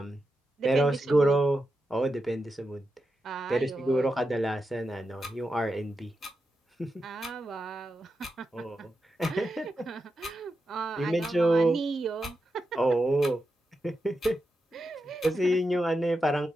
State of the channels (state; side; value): normal; both; correlation 0.88